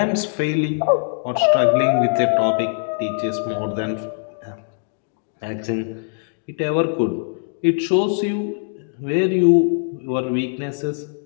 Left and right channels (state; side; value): silent; right; digital silence